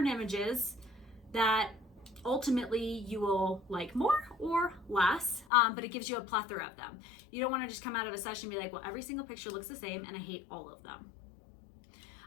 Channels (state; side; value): drops out; right; at 5.5 s